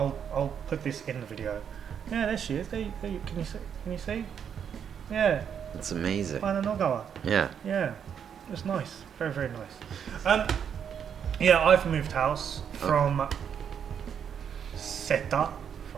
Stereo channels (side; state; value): left; quieter; 8.0 dB